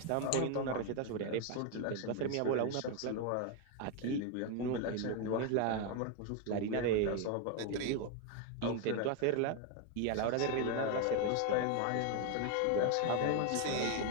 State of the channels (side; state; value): both; different; correlation 0.01